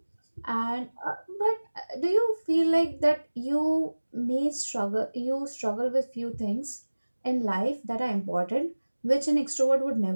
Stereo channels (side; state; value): both; inverted; correlation -1.00